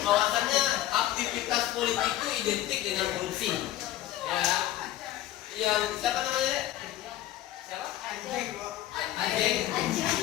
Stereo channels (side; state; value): right; quieter; 13.8 dB